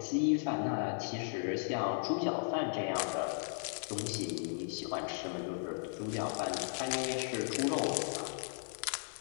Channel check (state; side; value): silent; right; digital silence